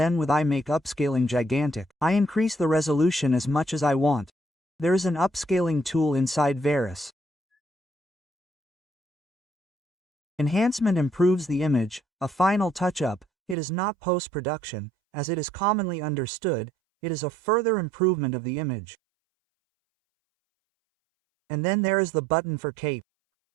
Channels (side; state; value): left; drops out; at 13.6 s